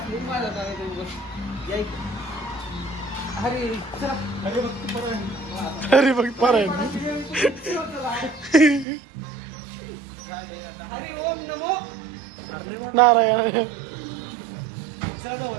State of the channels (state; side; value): drops out; left; at 8.8 s